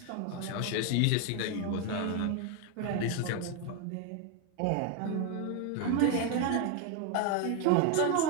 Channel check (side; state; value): both; different; correlation 0.01